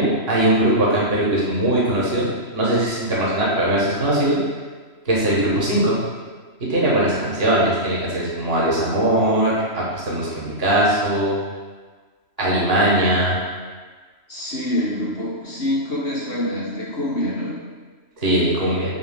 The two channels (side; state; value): right; late; 3.0 ms